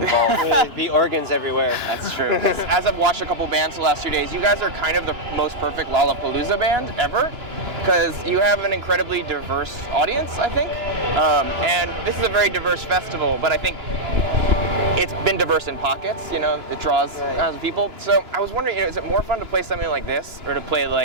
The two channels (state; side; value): late; left; 2.9 ms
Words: There'd be organs everywhere. That's true. As I've watched a couple bands the last 2 days, you guys are kind of the most perfect Lollapalooza band ever, because you have an incredibly diverse audience, I think. And this is a very diverse festival, but I think it's been diverse in pockets, you know, it draws kinds of people. So I was wondering, you know, is it more fun to play something like this or to play